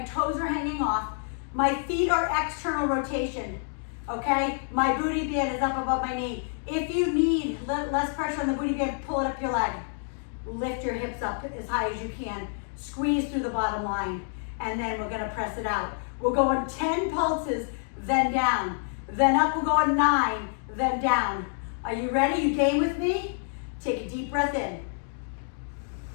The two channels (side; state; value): right; silent; 59 dB below the other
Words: are hanging off. My feet are external rotation, okay? My booty band is up above my knee. If you need less pressure on the booty band, pull it up your leg. Lift your hips up as high as you can. Squeeze through the bottom line, and then we're gonna press it out. We'll go on 10 pulses, then down. Then up, we'll go on 9, then down. Are you ready? You game with me? Take a deep breath in.